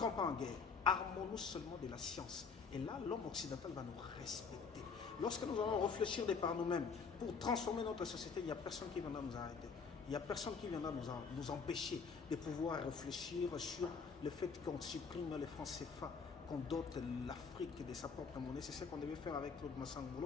pas en guerre. Armons-nous seulement de la science. Et là, l'homme occidental va nous respecter. Lorsque nous allons réfléchir de par nous-mêmes pour transformer notre société, il n'y a personne qui viendra nous arrêter. Il n'y a personne qui viendra nous empêcher de pouvoir réfléchir sur le fait qu'on supprime les francs CFA, qu'on dote l'Afrique de sa propre monnaie. C'est ce qu'on devait faire avec Claude Massang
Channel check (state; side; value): quieter; right; 5.4 dB